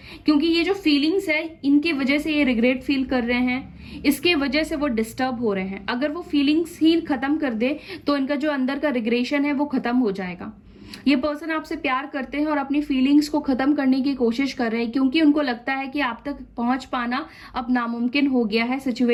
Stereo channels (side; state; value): both; identical; correlation 1.00